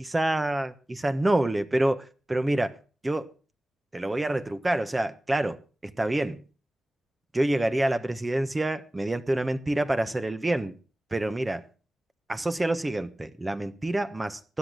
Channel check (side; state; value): both; normal; correlation 0.98